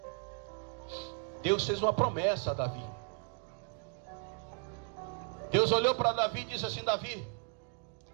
Deus fez uma promessa a Davi. Deus olhou para Davi e disse assim: Davi,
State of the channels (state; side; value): quieter; left; 38.5 dB